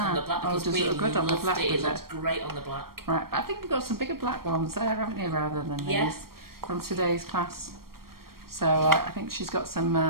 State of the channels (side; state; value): left; late; 0.93 ms